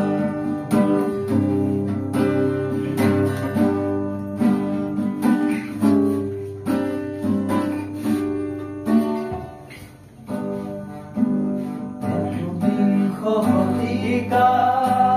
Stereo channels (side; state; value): both; identical; correlation 1.00